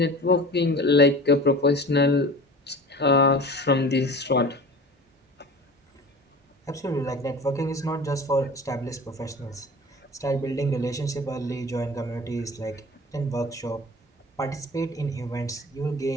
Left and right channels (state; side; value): normal; both; correlation 0.38